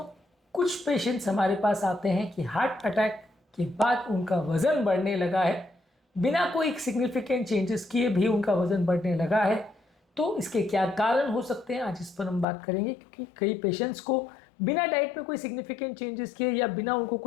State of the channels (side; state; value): right; drops out; at 12.5 s